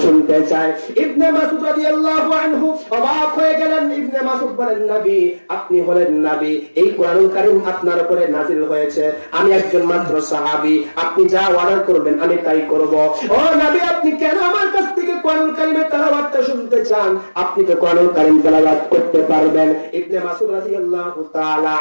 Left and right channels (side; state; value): both; inverted; correlation -1.00